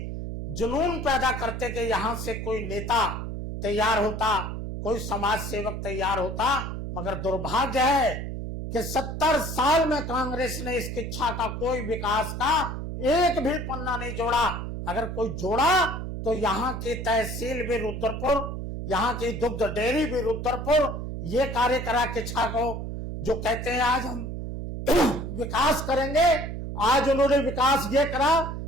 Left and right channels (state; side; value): noise; right; hum, 6 dB below the sound